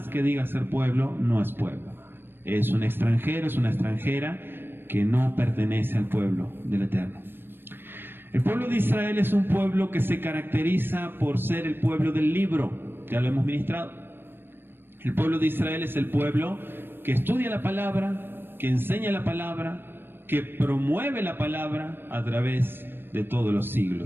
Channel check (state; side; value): late; left; 0.10 ms